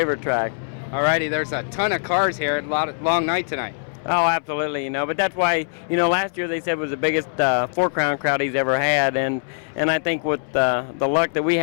track. All righty, there's a ton of cars here. A long night tonight. Oh, absolutely, you know, but that's why, you know, last year they said was the biggest Four Crown crowd he's ever had, and I think with the luck that we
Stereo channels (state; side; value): silent; right; 64 dB below the other